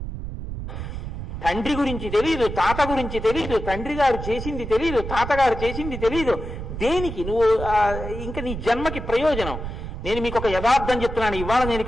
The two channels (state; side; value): noise; right; rumble, 7 dB below the sound